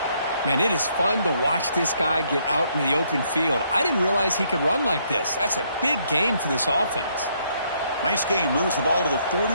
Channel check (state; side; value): inverted; both; correlation -0.71